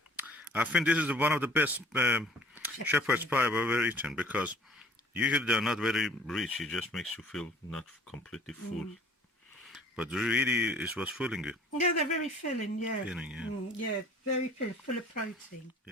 I think this is one of the best shepherd's pie I've ever eaten, because Usually they're not very rich. It just makes you feel not completely full. But really, it was filling you. Yeah, they're very filling, yeah. Filling, yeah. Yeah, very filling, full of protein.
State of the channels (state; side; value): normal; both; correlation 0.52